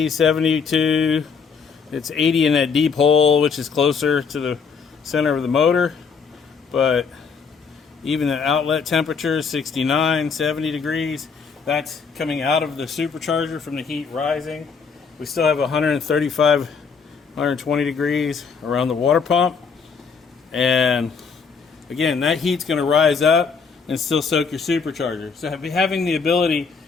72. It's 80 in that deep hole, which is closer to the center of the motor. But even the outlet temperature is 69, 70 degrees. That's coming out of the supercharger from the heat rising. We still have 135, 120 degrees around the water pump. And again, that heat's going to rise up and still soak your supercharger. So having the ability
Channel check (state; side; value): quieter; right; 5.6 dB